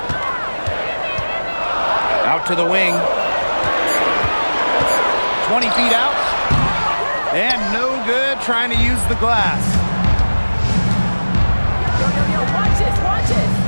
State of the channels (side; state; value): both; inverted; correlation -1.00